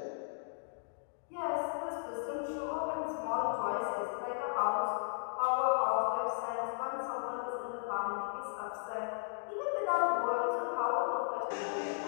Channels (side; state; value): right; silent; digital silence